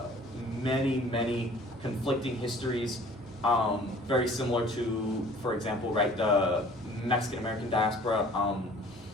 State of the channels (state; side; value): normal; both; correlation 0.50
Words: Many, many conflicting histories, very similar to, for example, right, the Mexican-American diaspora.